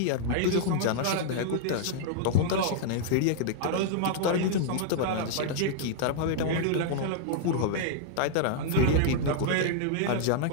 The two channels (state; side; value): different; both; correlation -0.01